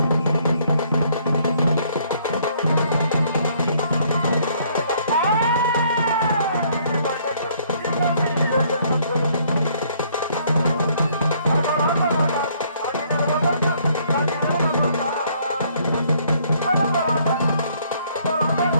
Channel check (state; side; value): inverted; both; correlation -0.65